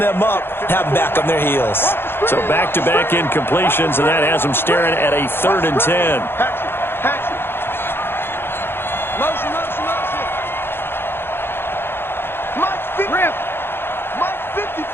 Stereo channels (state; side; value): late; right; 0.11 ms